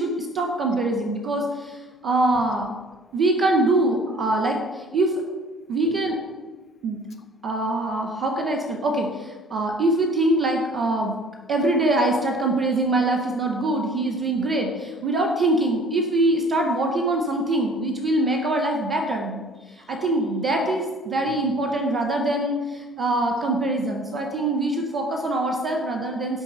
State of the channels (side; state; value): both; normal; correlation 0.51